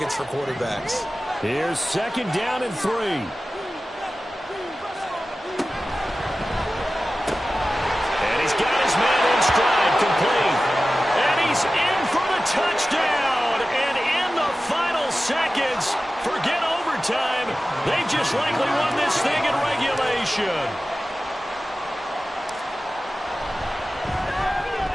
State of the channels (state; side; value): normal; both; correlation 0.95